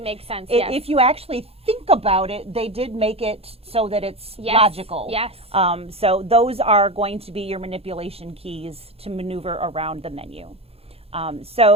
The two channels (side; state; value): left; late; 0.29 ms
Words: makes sense, yes. If you actually think about it, they did make it so that it's logical. Yes. So those are going to be your manipulation keys to maneuver around the menu.